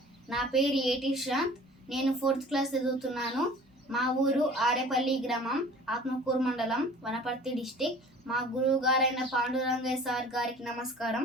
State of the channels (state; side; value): normal; both; correlation 0.46